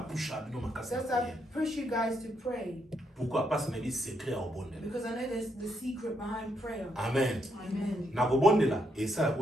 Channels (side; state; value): both; normal; correlation 0.77